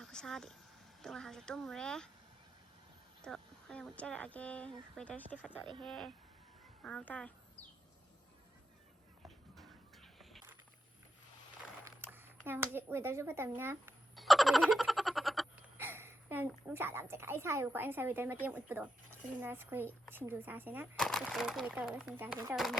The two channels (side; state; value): both; normal; correlation 0.87